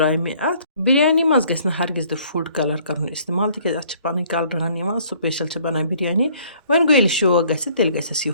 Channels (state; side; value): inverted; both; correlation -0.59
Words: مےٚ اَتھ بِریانی منٛز گژھِ نہٕ ہرگِز تہِ فُڈ کَلَر کَرُن اِستعمال تِکیٛازِ اَتھ چھِ پَنٕنۍ کَلرٕ ہن یِوان سُپیشَل چھِ بَنان بِریانی وۄنۍ گوٚو ییٚلہِ شوق گژھِ تیٚلہِ گژھِ اَسہِ